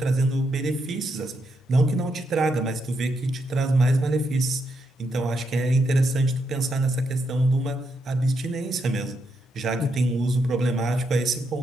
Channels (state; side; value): normal; both; correlation 0.80